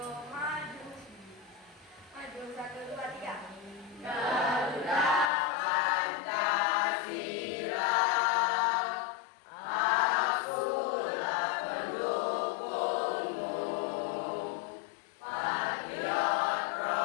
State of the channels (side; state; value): right; drops out; at 5.3 s